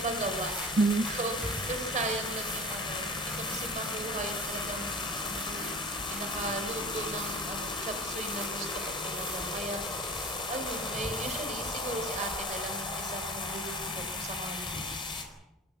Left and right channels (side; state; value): both; normal; correlation 0.38